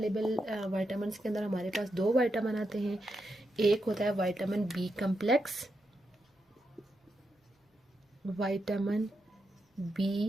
विटामिन्स के अंदर हमारे पास दो विटामिन आते हैं। एक होता है vitamin B complex, vitamin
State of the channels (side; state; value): both; normal; correlation 0.85